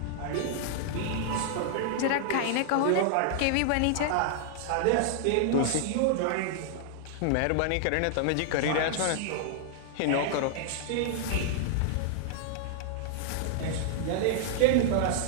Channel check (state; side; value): different; both; correlation -0.01